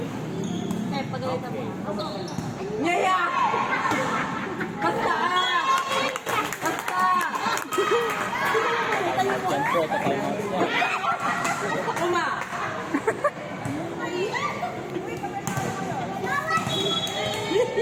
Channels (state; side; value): identical; both; correlation 1.00